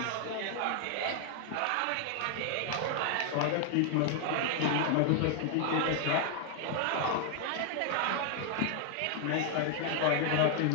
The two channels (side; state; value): both; different; correlation 0.00